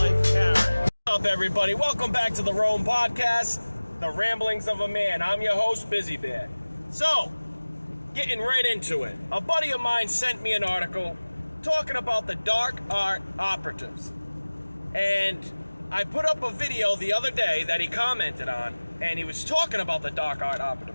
Karen. What's up, everybody? Welcome back to the R.O.A.M Podcast, the ramblings of a man. I'm your host, Bizziebear. So, getting right into it. A buddy of mine sent me an article talking about the dark art operatives. And I put up a video the other day that he commented on, and he was talking about the dark art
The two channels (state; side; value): inverted; both; correlation -1.00